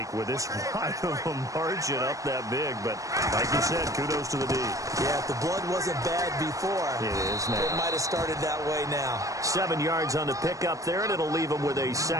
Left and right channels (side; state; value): left; late; 0.16 ms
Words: with this wide of a margin up that big. But like you said, kudos to the D. Yeah, if the blood wasn't bad before, it is now. It might have started that way now. 7 yards on the pickup there, and it'll leave them with a